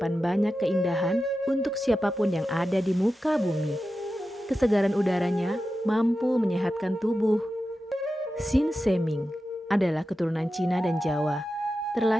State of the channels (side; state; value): both; normal; correlation 0.92